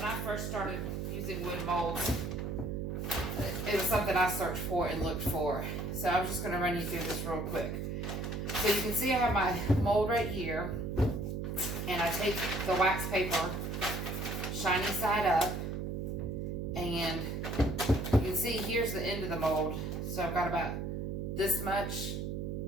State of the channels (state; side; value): noise; right; hum, 3 dB below the sound